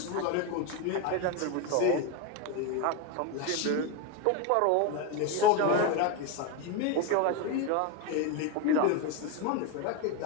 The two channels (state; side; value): different; both; correlation 0.03